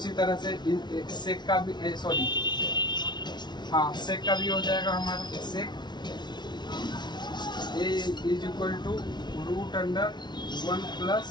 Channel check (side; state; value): right; late; 0.21 ms